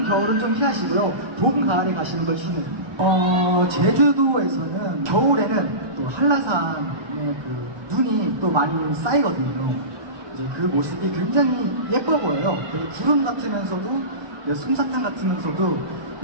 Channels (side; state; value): left; late; 1.2 ms